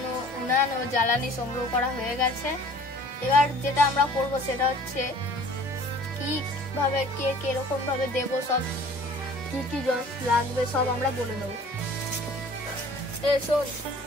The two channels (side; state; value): both; normal; correlation 0.49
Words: উনান ও জ্বালানি সংগ্রহ করা হয়ে গেছে। এবার যেটা আমরা করব সেটা হচ্ছে কি ভাবে কে কিরকম ভাবে দেবো, সব কি কি লাগবে সব আমরা বলে দেবো। শোন,